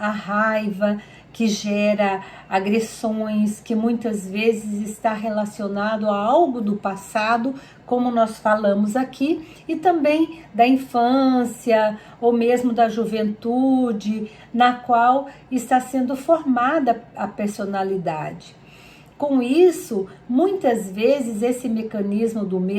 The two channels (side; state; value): both; identical; correlation 1.00